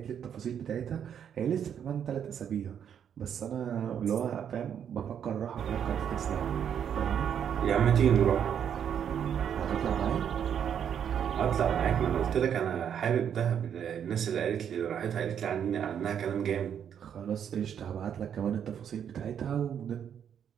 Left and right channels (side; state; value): left; quieter; 8.6 dB